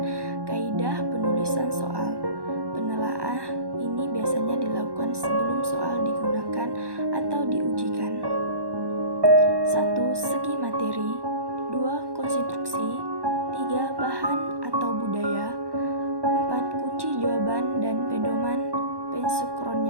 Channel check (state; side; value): late; left; 1.1 ms